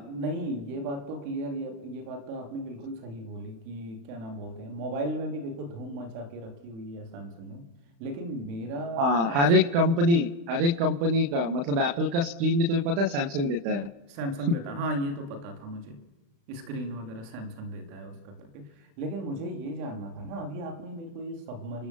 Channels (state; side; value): late; left; 35 ms